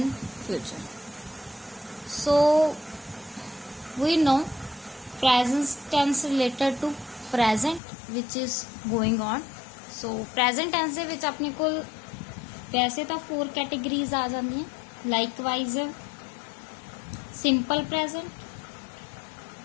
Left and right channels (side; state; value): right; drops out; at 7.8 s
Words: future. So we know present tense related to present which is going on. So present tense ਦੇ ਵਿੱਚ ਆਪਣੇ ਕੋਲ वैसे तो 4 categories आ जाती हैं। Likewise simple present,